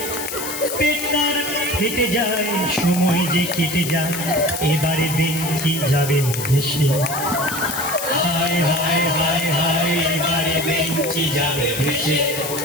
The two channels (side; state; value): left; noise; hiss, 6 dB below the sound